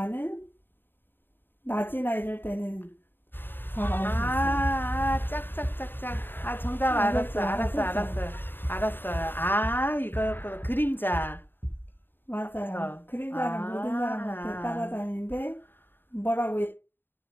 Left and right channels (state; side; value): late; right; 0.096 ms